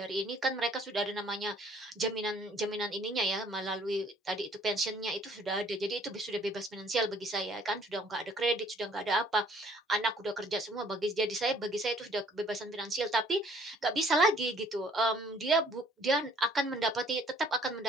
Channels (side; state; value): both; normal; correlation 0.59